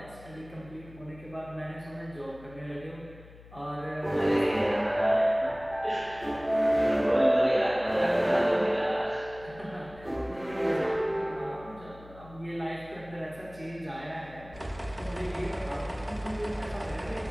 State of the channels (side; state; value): left; noise; hum, 20 dB below the sound